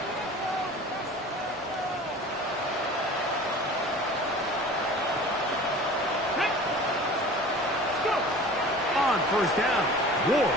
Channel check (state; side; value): normal; both; correlation 0.41